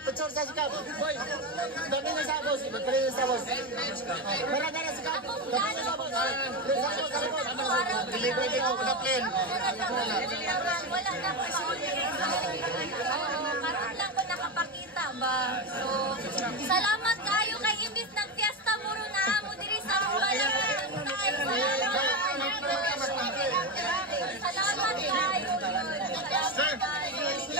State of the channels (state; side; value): normal; both; correlation 0.15